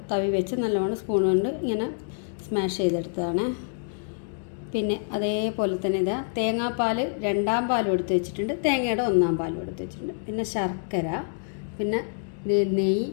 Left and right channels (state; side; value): silent; right; digital silence